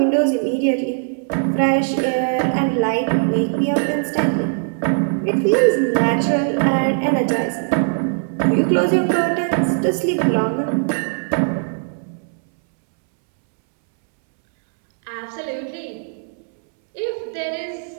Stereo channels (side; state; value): left; silent; 66 dB below the other